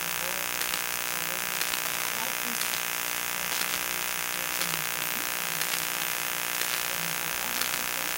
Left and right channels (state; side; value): identical; both; correlation 1.00